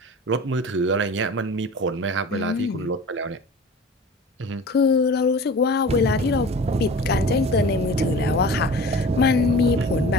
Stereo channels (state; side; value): normal; both; correlation 0.39